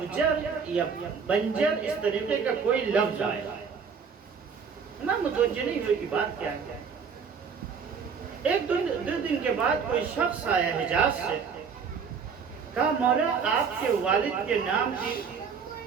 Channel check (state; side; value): quieter; left; 6.1 dB